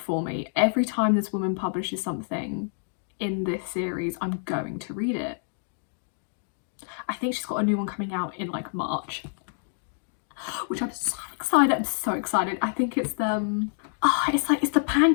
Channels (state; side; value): silent; right; digital silence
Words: me. Every time this woman publishes something in this series, I'm going to read it. I think she's got a new one coming out in like March, which I'm so excited. I'm so excited. I think it's it's the